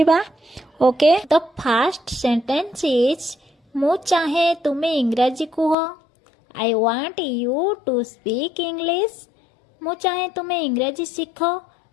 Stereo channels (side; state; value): right; drops out; at 5.8 s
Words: Okay, the first sentence is मु चाहे तुमे इंग्रजी कुह। I want you to speak English. मु चाहे तुमे इंग्रजी सीख।